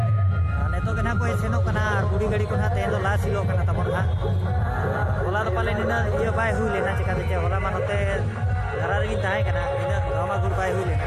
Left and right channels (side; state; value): both; identical; correlation 1.00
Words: नेतो के ना कोई सेनो कना गुडी गाड़ी को ना तेन ला सिलो कना तबन हा होला तो पाले निना ये बाय हुई लेना चिकाते चे होला मानते धारा रे ताहे कना इना गामा गुड बाय हुई लेना